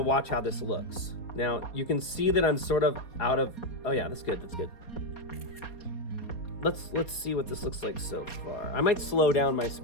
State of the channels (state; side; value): late; right; 4.1 ms